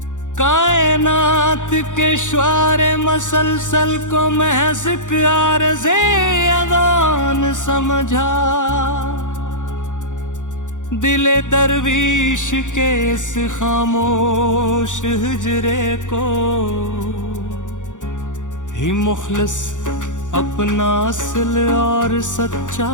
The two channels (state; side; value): late; right; 0.86 ms